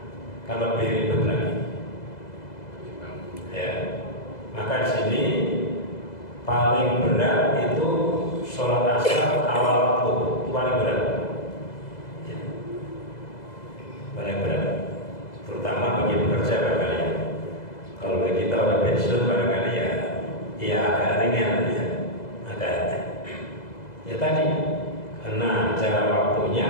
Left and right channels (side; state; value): right; late; 2.0 ms